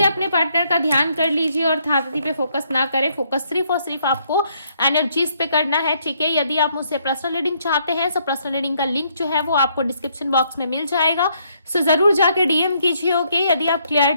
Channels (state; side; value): inverted; both; correlation -0.71